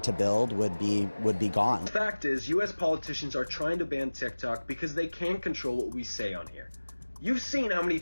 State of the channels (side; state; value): both; inverted; correlation -1.00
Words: to build would be gone. The fact is, US politicians are trying to ban TikTok because they can't control what we say on here. You've seen how many